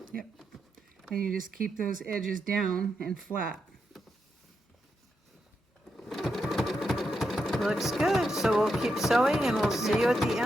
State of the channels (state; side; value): normal; both; correlation 0.84